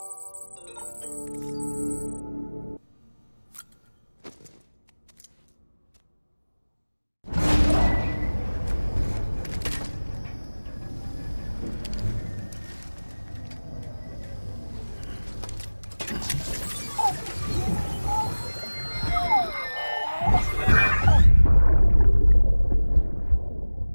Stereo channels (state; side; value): inverted; both; correlation -1.00